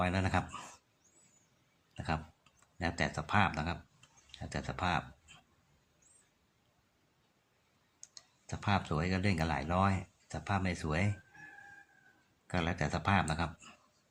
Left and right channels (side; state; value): both; identical; correlation 1.00